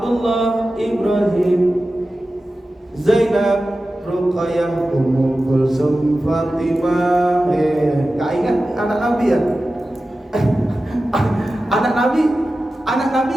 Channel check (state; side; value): normal; both; correlation 0.94